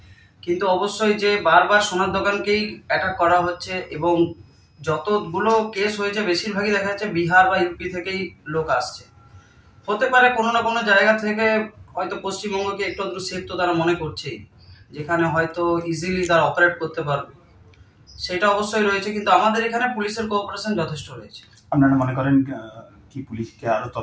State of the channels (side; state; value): both; identical; correlation 1.00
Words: কিন্তু অবশ্যই যে বারবার সোনার দোকানকেই অ্যাটাক করা হচ্ছে এবং যতগুলো কেস হয়েছে বেশিরভাগই দেখা যাচ্ছে বিহার বা ইউপি থেকেই লোক আসছে। হতে পারে কোনো না কোনো জায়গা থেকে হয়তো পশ্চিমবঙ্গকে একটু আধটু সেফ তো তারা মনে করছেই, যেখানে হয়তো ইজিলি তারা অপারেট করতে পারবে, সেটা অবশ্যই রয়েছে। কিন্তু আমাদের এখানে পুলিশের কোঅপারেশন যথেষ্ট রয়েছে। আপনারা মনে করেন কি পুলিশকে আরো